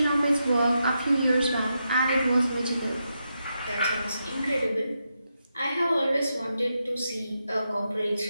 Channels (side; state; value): both; inverted; correlation -0.85